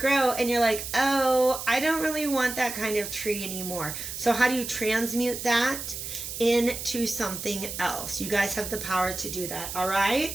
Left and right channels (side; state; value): right; noise; hiss, 7 dB below the sound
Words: and you're like, oh, I don't really want that kind of tree anymore. So how do you transmute that into something else? You guys have the power to do that. All